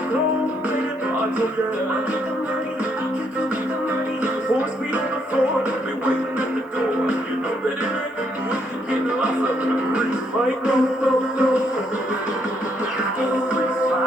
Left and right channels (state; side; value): normal; both; correlation 0.73